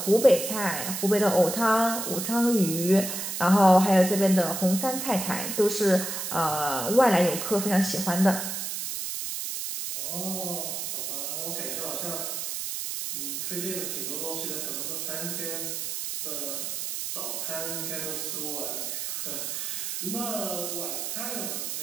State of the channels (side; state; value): right; noise; hiss, 4 dB below the sound